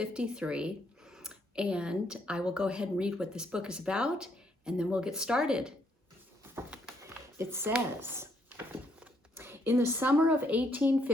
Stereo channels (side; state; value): both; normal; correlation 0.72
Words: and I will go ahead and read what this book is about, and then we'll get started. It says, in the summer of